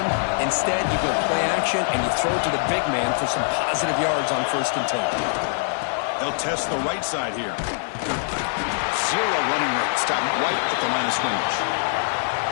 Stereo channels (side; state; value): right; silent; digital silence